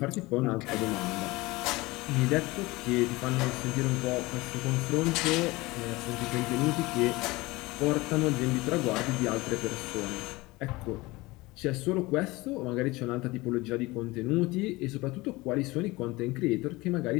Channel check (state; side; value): quieter; right; 21.6 dB